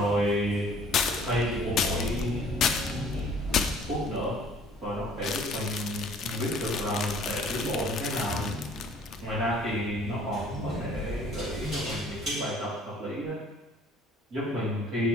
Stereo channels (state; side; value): normal; both; correlation 0.55